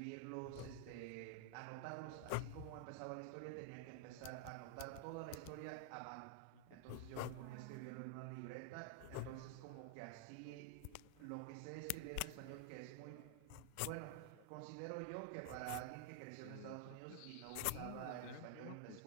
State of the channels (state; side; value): different; both; correlation 0.00